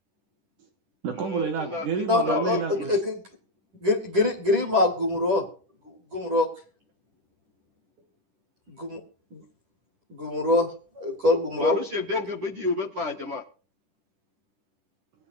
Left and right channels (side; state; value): left; late; 10 ms